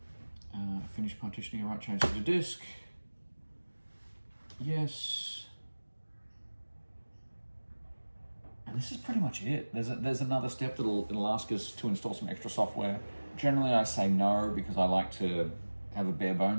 Finish partitioning. All right, change to the disk. Yes. And this is pretty much it. There's another step it'll ask us to install some extra software. Generally, I say no because I like to have a bare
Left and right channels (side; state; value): both; inverted; correlation -1.00